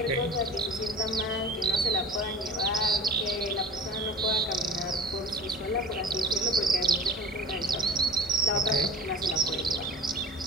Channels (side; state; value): both; normal; correlation 0.39